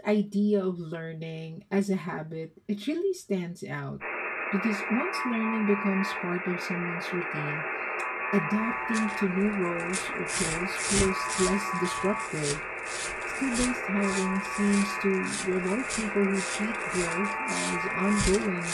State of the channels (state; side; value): identical; both; correlation 1.00